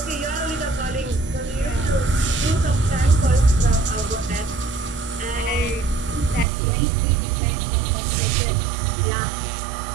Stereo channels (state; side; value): drops out; left; at 6.5 s